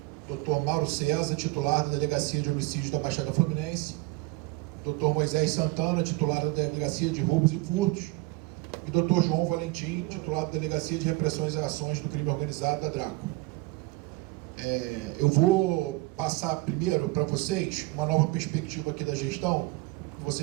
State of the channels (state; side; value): quieter; left; 21.7 dB